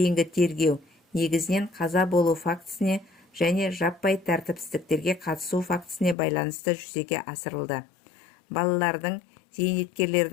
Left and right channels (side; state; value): right; drops out; at 6.2 s